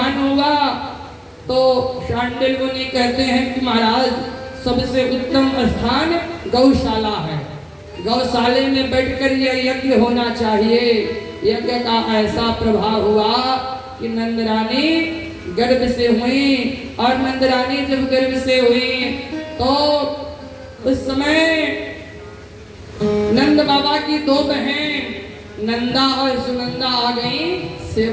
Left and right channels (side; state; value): both; identical; correlation 1.00